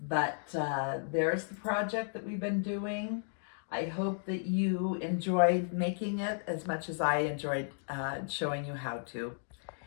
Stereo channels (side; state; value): right; silent; digital silence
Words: but there's the project that we've been doing. I hope that you enjoyed making it as much as I enjoyed showing you how to.